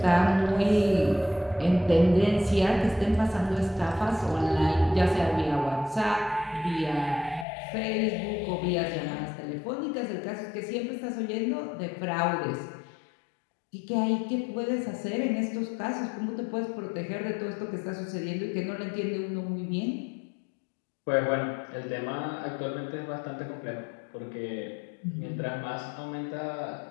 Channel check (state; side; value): drops out; right; at 7.5 s